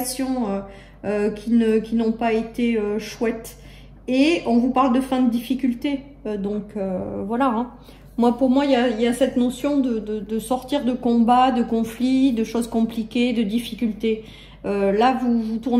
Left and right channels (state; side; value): identical; both; correlation 1.00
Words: qui n'ont pas été chouettes. Et on vous parle de fin de difficulté. Voilà. Hein. Pour moi, il y a cette notion de sortir de combats, de conflits, de choses compliquées, de difficultés. Là, vous